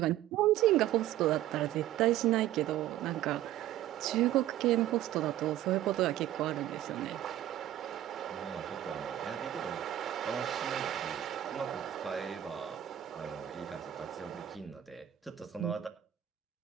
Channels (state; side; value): quieter; left; 12.7 dB